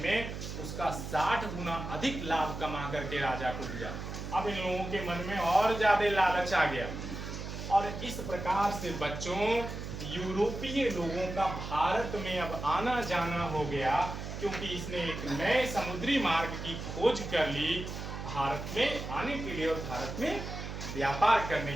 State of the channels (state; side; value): noise; right; hum, 7 dB below the sound